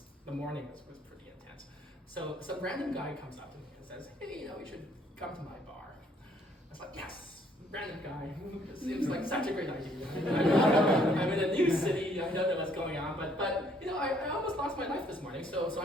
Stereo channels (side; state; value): both; normal; correlation 0.65